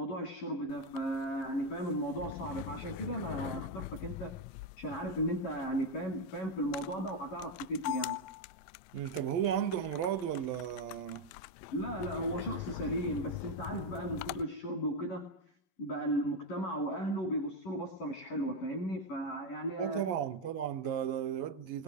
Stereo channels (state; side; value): late; right; 11 ms